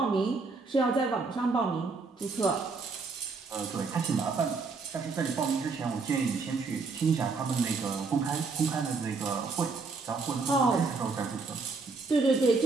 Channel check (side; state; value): left; quieter; 4.3 dB